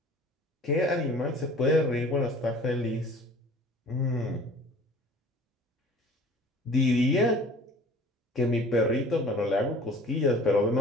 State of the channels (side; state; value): both; normal; correlation 0.47